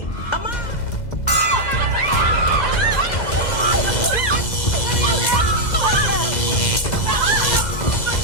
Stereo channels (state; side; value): late; right; 2.0 ms